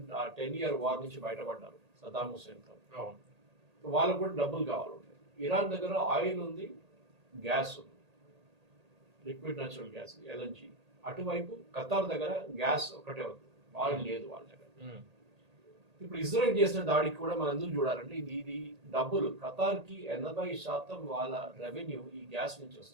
ఇయర్ వార్ నుంచి బయటపడ్డారు సదాం హుస్సేన్తో. వాళ్ళకు కూడా డబ్బులు కావాలి. ఇరాన్ దగ్గర ఆయిల్ ఉంది, గ్యాస్ ఉంది, లిక్విడ్ న్యాచురల్ గ్యాస్ ఎల్ఎన్జీ. అటువైపు ఖతార్ దగ్గర గ్యాస్ ఒకటే ఉంది, ఆయిల్ లేదు వాళ్ళ దగ్గర. ఇప్పుడు ఇజ్రాయెల్ చేసిన దాడికి కూడా మనం ఎందుకు చూడాలంటే, ఇది డబ్బులు ఖతార్కి 80% వాళ్ళ రెవెన్యూ ఈ గ్యాస్ నుంచి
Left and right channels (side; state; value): left; late; 1.8 ms